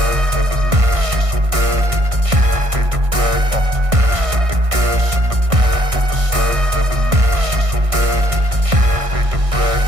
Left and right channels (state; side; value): late; left; 1.6 ms